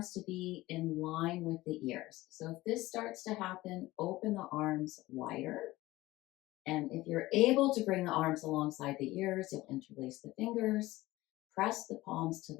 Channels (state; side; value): quieter; right; 18.2 dB